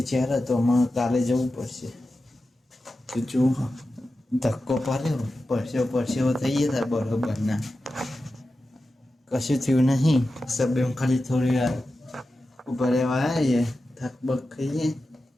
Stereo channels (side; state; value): both; normal; correlation 0.92